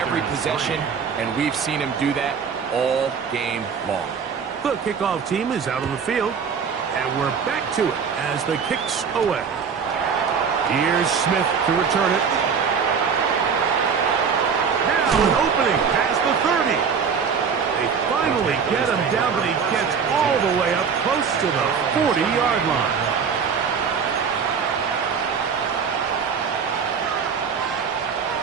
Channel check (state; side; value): quieter; left; 6.3 dB